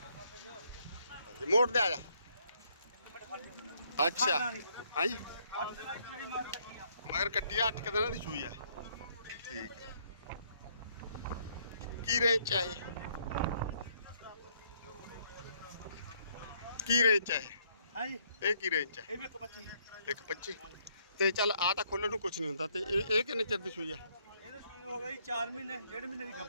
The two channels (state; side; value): inverted; both; correlation -0.69